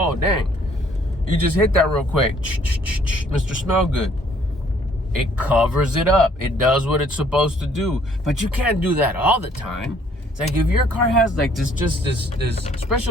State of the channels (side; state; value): both; normal; correlation 0.62